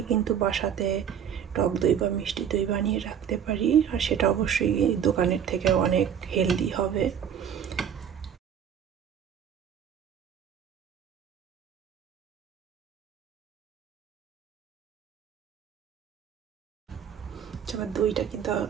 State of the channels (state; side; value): quieter; left; 8.6 dB